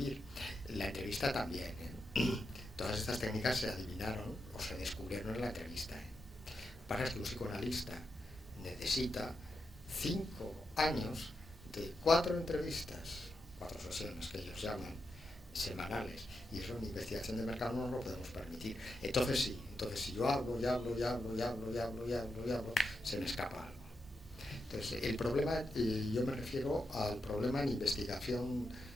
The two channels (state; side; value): normal; both; correlation 0.86